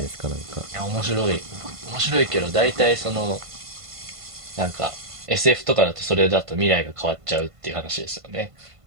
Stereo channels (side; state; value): left; late; 1.5 ms